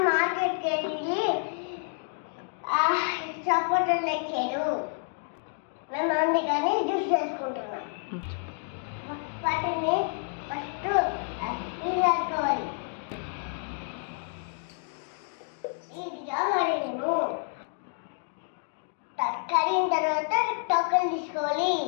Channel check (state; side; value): silent; right; 59 dB below the other